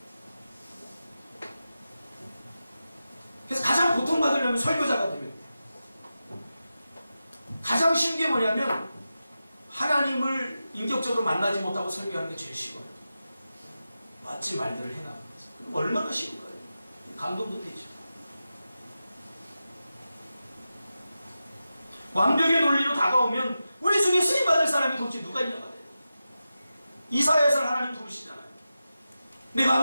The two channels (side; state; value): both; inverted; correlation -0.92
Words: 그래서 가장 고통받으려면 설교자가 되면 돼요. 가장 쉬운 게 뭐냐면 하나님을 인격적으로 만나지 못하고 설교하는 게 제일 쉬워요. 멋진 말들을 해나가는 거죠. 그럼 얼마나 쉬울까요? 감동도 되죠. 완벽의 논리로 다가오면 우리 중에 쓰임받을 사람이 도대체 누가 있냐고 해요. 이사야에서 하나님 부르시잖아요.